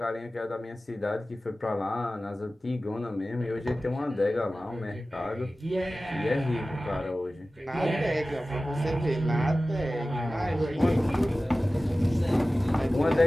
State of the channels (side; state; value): both; normal; correlation 0.96